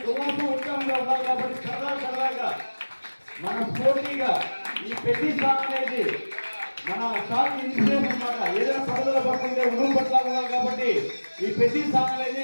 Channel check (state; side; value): inverted; both; correlation -1.00